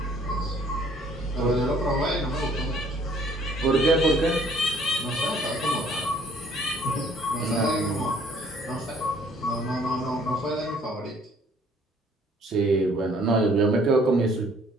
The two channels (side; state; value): both; normal; correlation 0.59